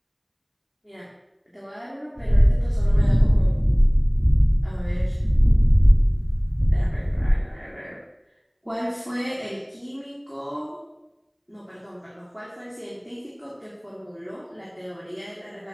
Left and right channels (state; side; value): identical; both; correlation 1.00